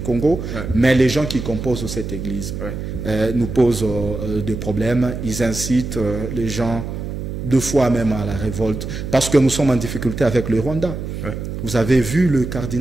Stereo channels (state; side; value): noise; right; hum, 6 dB below the sound